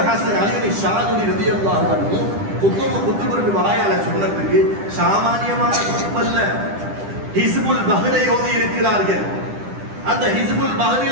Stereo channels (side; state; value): left; late; 10 ms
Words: ஹசன் அலி ஷாதுலி ரலியல்லாஹு அன்ஹு குத்துபு வாயால சொன்னதுக்கு சாமானியமான குத்துபல்ல, ஹிஸ்புல் பஹ்ரை ஓதி இருக்கிறார்கள். அந்த ஹிஸ்புல்